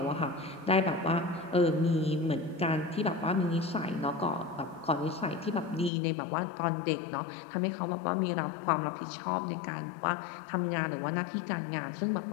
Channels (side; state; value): right; drops out; at 5.9 s